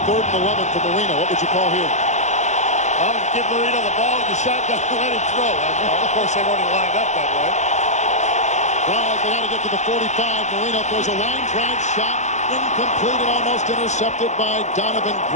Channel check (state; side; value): late; right; 0.34 ms